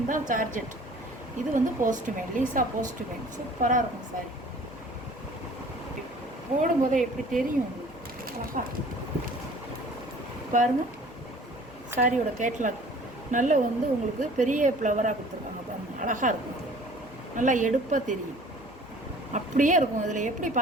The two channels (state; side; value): noise; right; hum, 27 dB below the sound